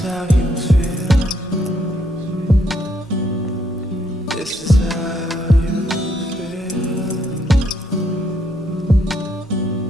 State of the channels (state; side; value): normal; both; correlation 0.72